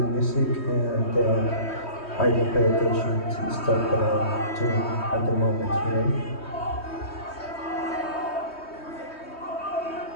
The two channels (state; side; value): late; right; 3.2 ms